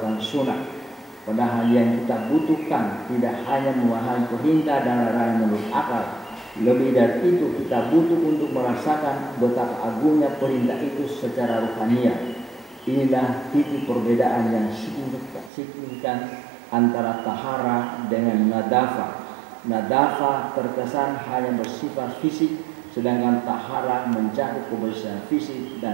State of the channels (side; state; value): left; drops out; at 15.5 s